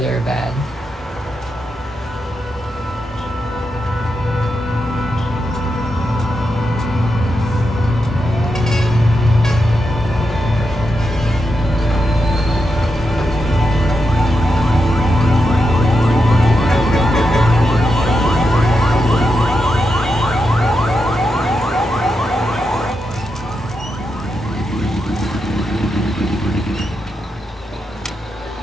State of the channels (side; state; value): both; normal; correlation 0.86